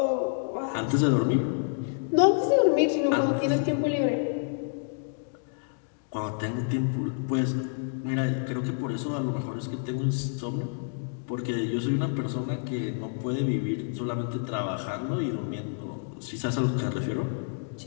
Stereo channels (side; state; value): right; silent; digital silence